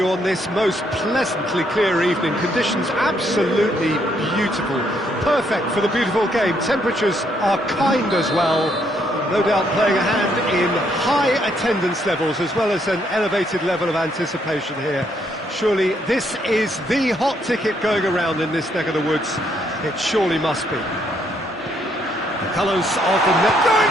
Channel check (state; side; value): normal; both; correlation 0.72